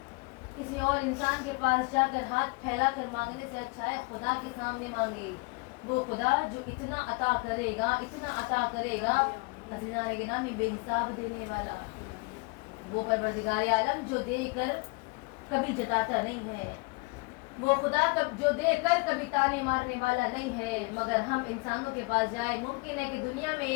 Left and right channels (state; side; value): quieter; right; 28.0 dB